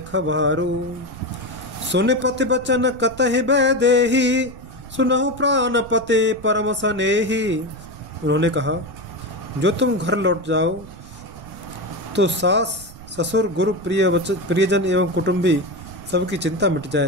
खबारू। सुन पति बचन कतहि बैदेही, सुनहु प्राण पते परम सनेही। उन्होंने कहा, जो तुम घर लौट जाओ तो सास ससुर गुरु प्रियजन एवं कुटुंबी सबकी चिंता मिट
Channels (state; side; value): noise; right; rumble, 18 dB below the sound